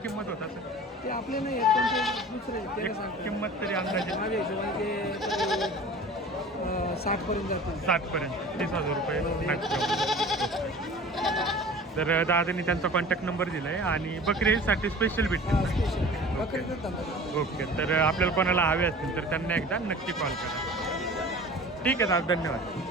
होत असेल? ते आपले नाही आहेत पण ते दुसरे आहेत. त्याला एक सांगतो किंमत तरी अंदाजे माझ्या हिशोबाने ते 60 पर्यंत जातील. 60 पर्यंत 30,000 रुपये मॅक्सिमम. तर दादानी त्यांचा कॉन्टॅक्ट नंबर दिला आहे आणि बकरीसाठी स्पेशल भेटतील. स्पेशल बकरीचं धंदा. ओके. तर आपल्याला कोणाला हवे असतील तर त्यांना एकदा नक्की कॉल करा. ठीक आहे दादा, धन्यवाद.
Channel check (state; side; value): normal; both; correlation 0.41